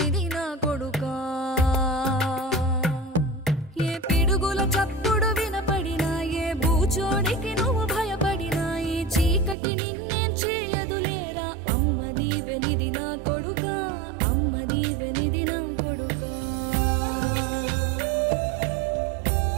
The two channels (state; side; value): drops out; left; at 9.6 s